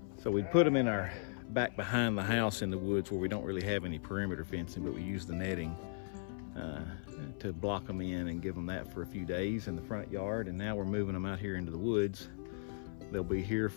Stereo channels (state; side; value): silent; right; 53 dB below the other